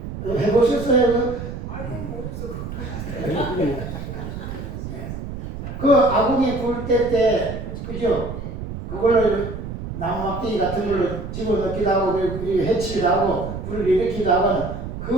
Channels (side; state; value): right; noise; rumble, 8 dB below the sound